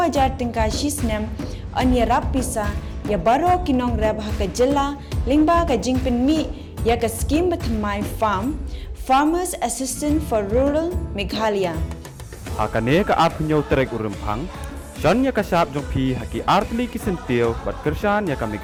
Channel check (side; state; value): both; identical; correlation 1.00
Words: jar tingka shisnem anya rap pisa ya baro kinong rap ha ka jilla lingba ka jingpen mi ya ka scheme batmai farm Farmers Assistant for Rural Meghalaya. Hakane ka apnyo trek urempang John ya ka sap jong pi haki artli kisentio bat kersan ya ka